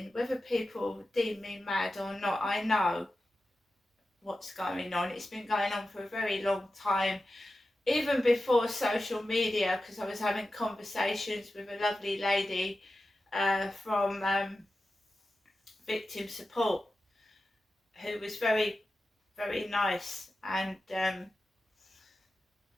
Whether people deem me mad or not, I know what's going on. It's been going on for a very long time, even before social media, because I was having conversations with a lovely lady from victim support, who was very, very nice, and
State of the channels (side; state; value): both; normal; correlation 0.93